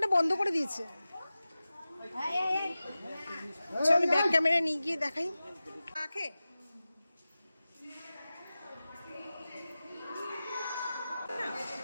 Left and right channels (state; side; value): inverted; both; correlation -0.95